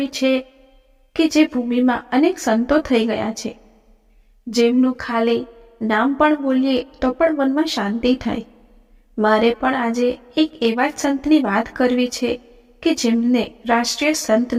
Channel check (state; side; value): identical; both; correlation 1.00